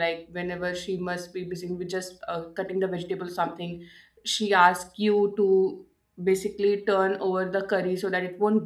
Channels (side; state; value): both; identical; correlation 1.00